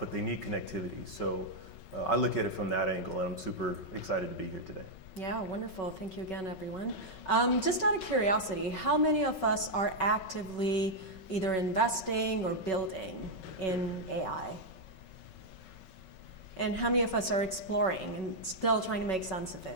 they need connectivity. So I look at it from that angle, and I'm super excited to be here today. Yeah, wonderful. Thank you again, everyone. Just out of curiosity, how many of us are actively either investing or building in AI? And how many of us are exploring and still trying to make sense of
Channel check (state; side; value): late; right; 5.3 ms